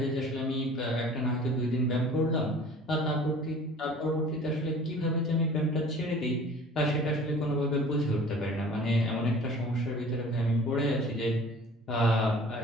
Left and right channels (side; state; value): both; normal; correlation 0.46